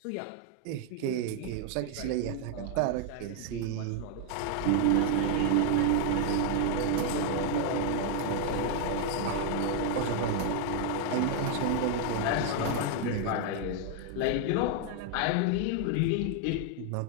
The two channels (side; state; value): both; different; correlation 0.00